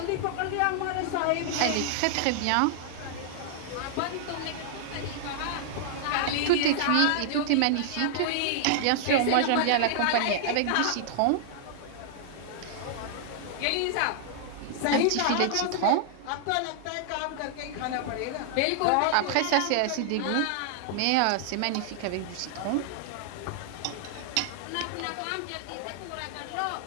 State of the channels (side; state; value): both; different; correlation -0.01